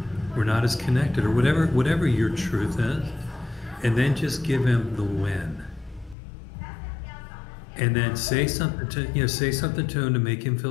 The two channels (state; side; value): drops out; right; at 6.2 s